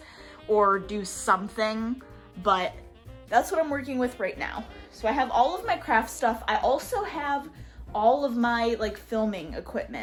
or do something, but that's what I'm working with right now. So I have all of my craft stuff. I also have all of my like filming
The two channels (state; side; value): identical; both; correlation 1.00